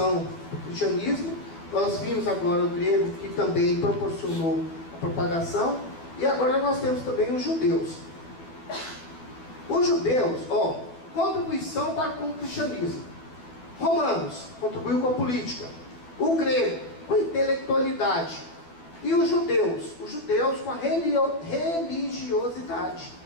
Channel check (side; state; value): right; late; 12 ms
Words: do cristianismo. Nós vimos agora o grego que também proporcionou a propagação. E agora nós temos também os judeus. Os judeus, contribuição para com o cristianismo. Romanos, contribuiu com a política. O grego, com a intelectualidade. E os judeus com a religiosidade.